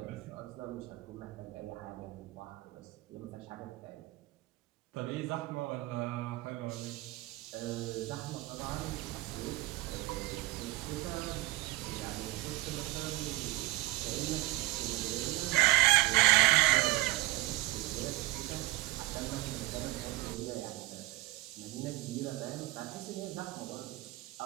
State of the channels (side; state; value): left; quieter; 20.7 dB